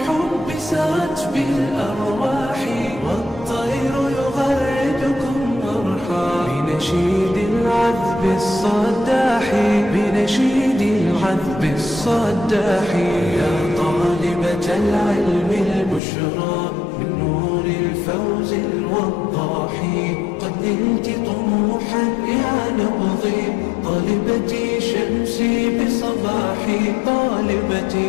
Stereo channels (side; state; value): right; drops out; at 16.0 s